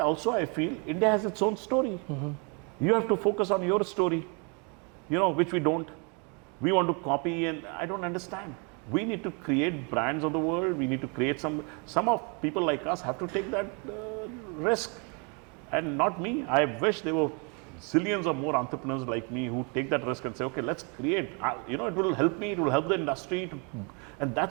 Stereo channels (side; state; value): left; quieter; 34.5 dB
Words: I feel India has its own story. You have to focus on your story, which we don't. We want to copy, and I don't understand. We need to create brands of the world. We need to create some of people like us have to take that risk, and not me. I wish there were zillions of more entrepreneurs like me who take that risk and say, okay, let's create. It will help me, it will help the industry, and